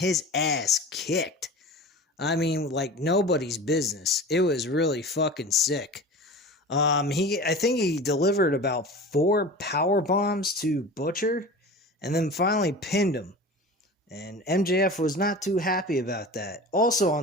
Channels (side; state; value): both; normal; correlation 0.35